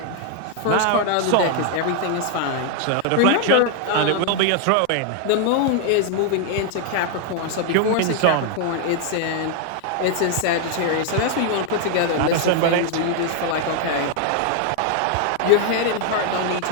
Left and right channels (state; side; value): different; both; correlation 0.00